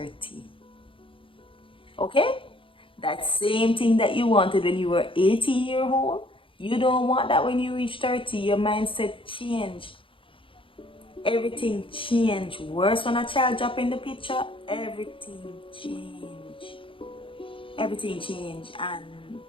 Okay? That same thing that you wanted when you were 18 years old, you don't want that when you reach 30. Your mindset change. Everything change. Worse when a child drop in the picture, everything change. Everything change. And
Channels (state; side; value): late; right; 0.25 ms